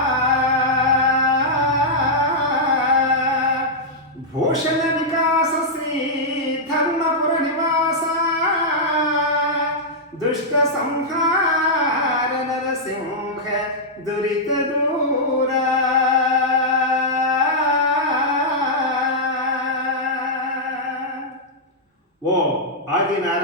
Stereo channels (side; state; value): both; normal; correlation -0.07